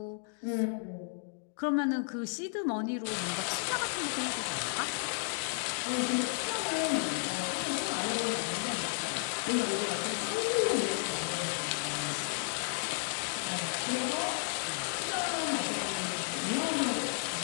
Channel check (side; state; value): right; silent; 56 dB below the other